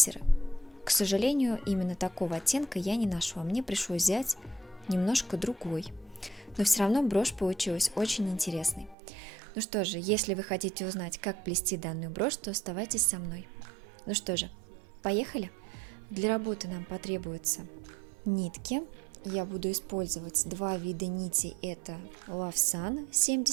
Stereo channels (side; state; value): left; drops out; at 9.0 s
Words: К сожалению, именно такого оттенка я не нашла, мне пришлось взять немножко другой. Но все равно брошь получилась очень интересной. Ну что же, если вы хотите узнать, как плести данную брошь, то оставайтесь со мной. Ну что же, поехали! Для работы нам потребуются нитки. Я буду использовать два вида нитей. Это Love Sun